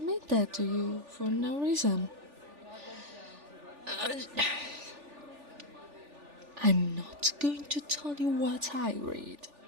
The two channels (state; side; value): late; left; 3.4 ms